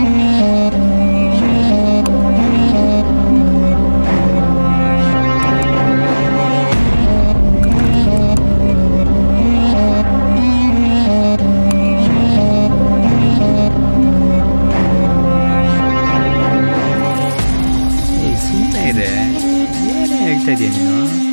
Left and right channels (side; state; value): both; inverted; correlation -1.00